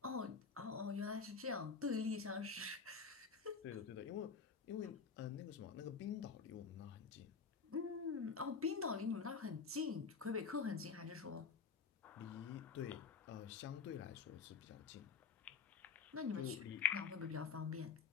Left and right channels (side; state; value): right; quieter; 5.7 dB